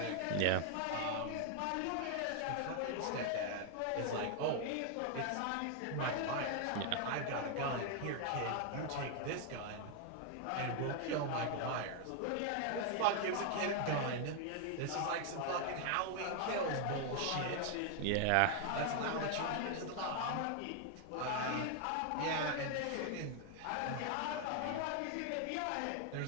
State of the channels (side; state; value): both; different; correlation 0.00